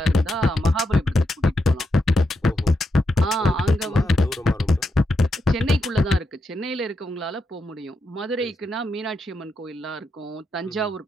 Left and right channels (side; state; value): both; normal; correlation 0.84